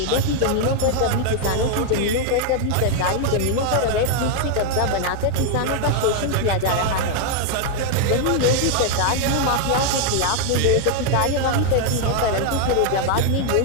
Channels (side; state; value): both; different; correlation 0.00